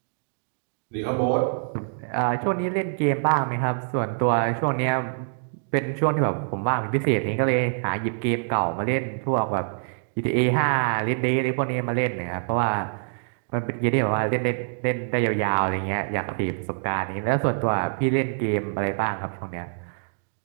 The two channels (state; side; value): silent; left; digital silence